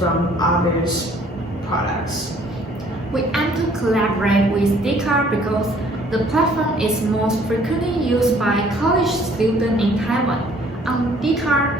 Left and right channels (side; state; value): both; normal; correlation 0.58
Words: others' products? We aim to collaborate with Dcard because the platform is most frequently used by college students in Taiwan. On Dcard,